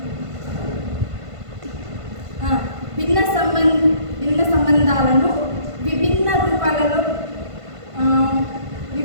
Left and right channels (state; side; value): late; left; 1.5 ms